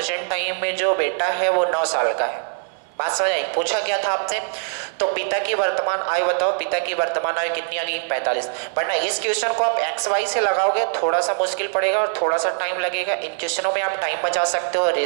टाइम में जो बेटा है वो 9 साल का है। बात समझ आई? पूछा क्या था आपसे? तो पिता की वर्तमान आयु बताओ। पिता की वर्तमान आयु कितनी आ गई? 45। बट ना इस क्वेश्चन को आप एक्स वाई से लगाओगे थोड़ा सा मुश्किल पड़ेगा और थोड़ा सा टाइम लगेगा। इन क्वेश्चनों में आप टाइम बचा सकते हो,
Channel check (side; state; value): left; silent; digital silence